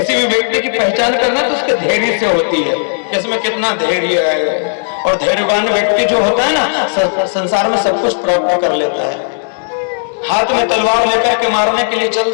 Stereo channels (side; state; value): right; silent; digital silence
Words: भी व्यक्ति की पहचान करना तो उसके धैर्य से होती है, इसमें कितना धैर्य है। और धैर्यवान व्यक्ति जो होता है ना, संसार में सब कुछ प्राप्त कर लेता है। हाथ में तलवार लेकर के मारने के लिए चल